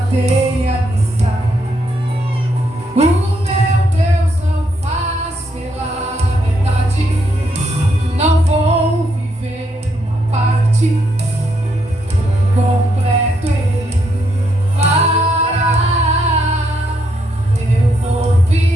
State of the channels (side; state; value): both; normal; correlation 0.77